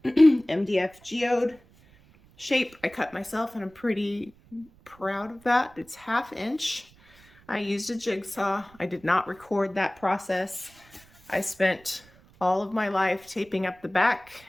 MDF geode shape. I cut myself, and I'm pretty proud of that. It's 1/2 inch. I used a jigsaw. I did not record that process. I spent all of my life taping up the back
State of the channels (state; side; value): noise; right; rumble, 27 dB below the sound